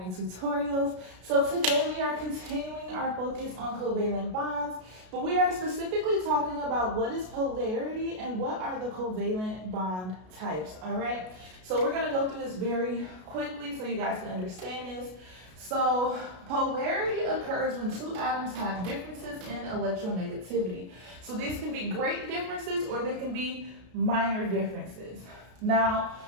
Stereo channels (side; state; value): left; late; 33 ms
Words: Tutorials. So today we are continuing our focus on covalent bonds, but we are specifically talking about what is polarity and what are the covalent bond types, all right? So we're gonna go through this very quickly so you guys can understand this. So polarity occurs when two atoms have differences in electronegativity. So these can be great differences or they can be minor differences. Now,